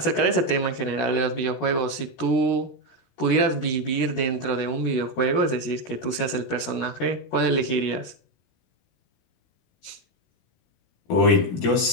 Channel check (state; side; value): late; right; 16 ms